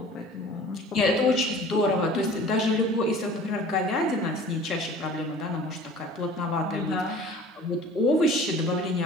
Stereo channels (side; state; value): both; normal; correlation 0.46